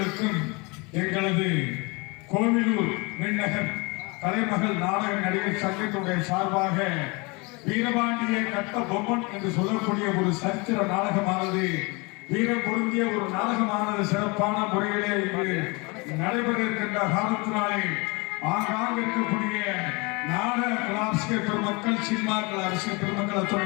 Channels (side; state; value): right; quieter; 28.1 dB